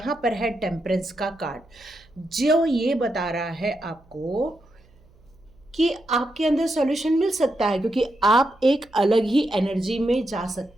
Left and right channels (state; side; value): noise; right; hum, 29 dB below the sound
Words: पर है टेम्परेंस का कार्ड, जो ये बता रहा है आपको कि आपके अंदर सॉल्यूशन मिल सकता है, क्योंकि आप एक अलग ही एनर्जी में जा